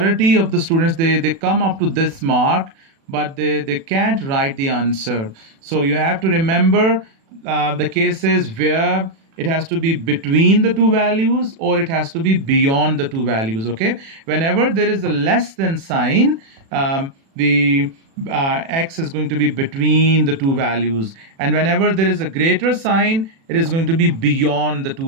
of the students, they come up to this mark, but they can't write the answer. So you have to remember the cases where it has to be between the two values, or it has to be beyond the two values. Okay, whenever there is a less than sign, the x is going to be between the two values, and whenever there is a greater sign, it is going to be beyond the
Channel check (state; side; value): late; left; 36 ms